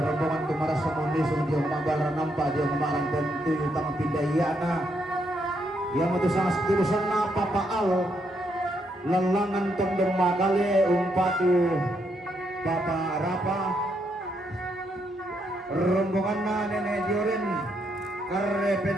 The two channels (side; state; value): both; normal; correlation 0.77